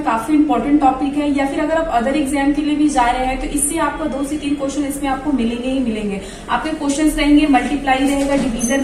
काफी इंपॉर्टेंट टॉपिक है, या फिर अगर आप अदर एग्जाम के लिए भी जा रहे हैं तो इससे आपका 2 से 3 क्वेश्चन इसमें आपको मिलेंगे ही मिलेंगे। आपके क्वेश्चन रहेंगे, मल्टीप्लाई रहेगा, डिवीजन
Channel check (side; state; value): both; identical; correlation 1.00